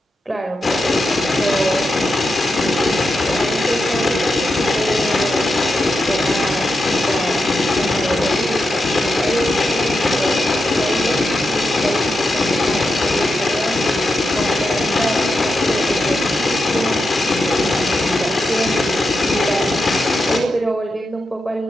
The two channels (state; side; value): normal; both; correlation 0.87